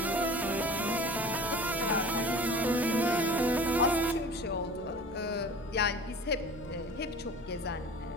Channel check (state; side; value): normal; both; correlation 0.40